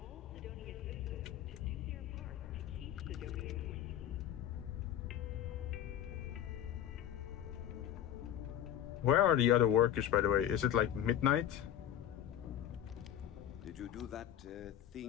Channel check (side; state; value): right; quieter; 10.8 dB